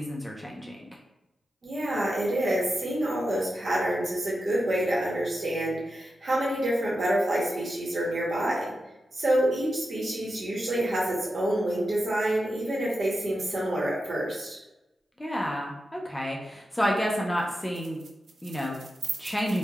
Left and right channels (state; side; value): normal; both; correlation 0.89